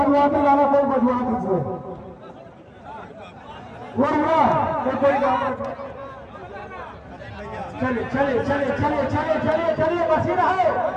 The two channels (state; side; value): identical; both; correlation 1.00